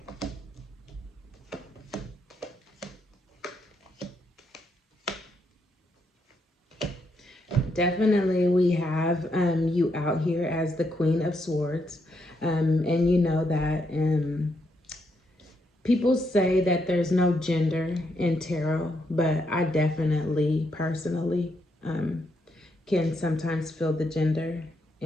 Definitely, we have you out here as the Queen of Swords. And you know that people say that there's no gender in tarot, but I definitely, personally, can sometimes feel the gender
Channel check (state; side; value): normal; both; correlation 0.78